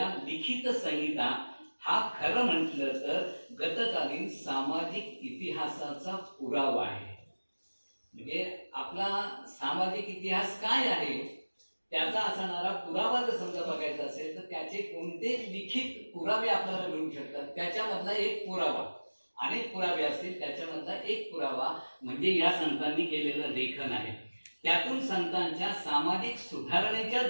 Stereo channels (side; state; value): both; inverted; correlation -1.00